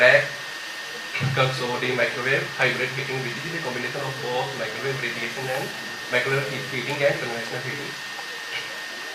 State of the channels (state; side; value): identical; both; correlation 1.00